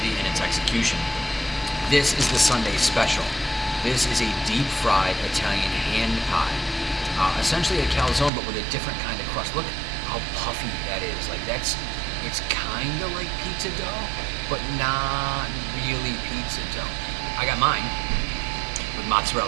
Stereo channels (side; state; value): left; drops out; at 8.3 s